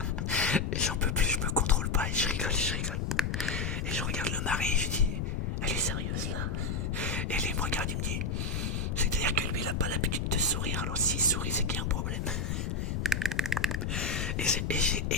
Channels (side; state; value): left; noise; rumble, 1 dB below the sound